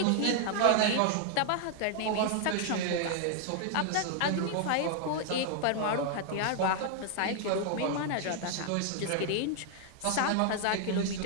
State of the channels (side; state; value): both; different; correlation 0.00